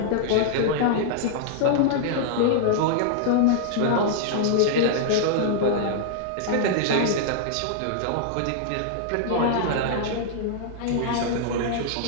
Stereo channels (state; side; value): different; both; correlation -0.01